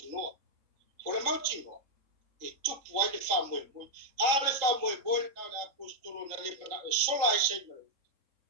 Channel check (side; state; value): left; late; 3.8 ms